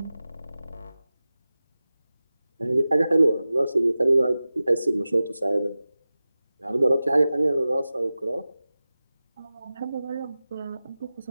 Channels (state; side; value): inverted; both; correlation -0.95